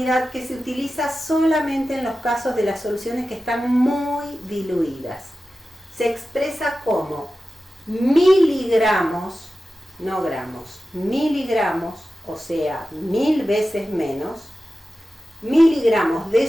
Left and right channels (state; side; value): normal; both; correlation 0.94